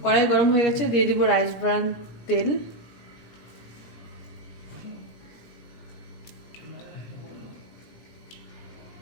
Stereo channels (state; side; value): late; right; 17 ms